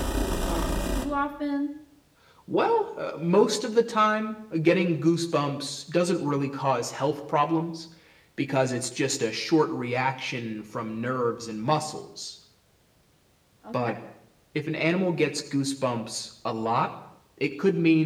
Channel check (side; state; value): both; identical; correlation 1.00